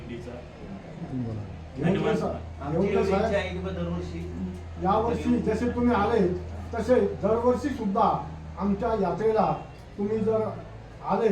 धन्यवाद. दरवर्षी यावर्षी जसे तुम्ही आले तसे दरवर्षी सुद्धा आमच्या यात्रेला तुम्ही जर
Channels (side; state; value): both; identical; correlation 1.00